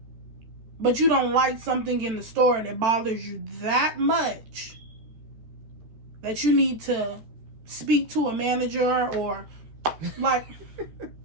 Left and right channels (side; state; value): left; late; 13 ms